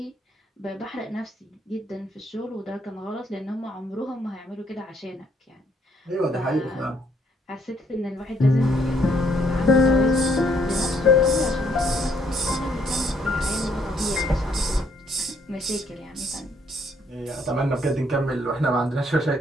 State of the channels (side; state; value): both; normal; correlation 0.69